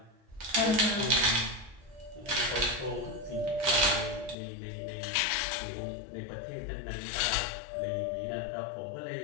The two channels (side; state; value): right; drops out; at 4.4 s